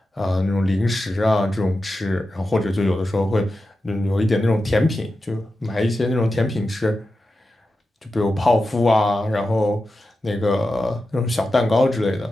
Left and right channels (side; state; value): both; normal; correlation 0.91